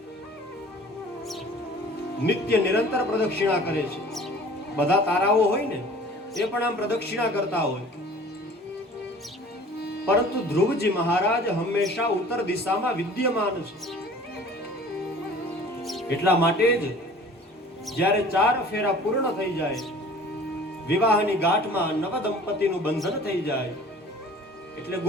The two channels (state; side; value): normal; both; correlation 0.47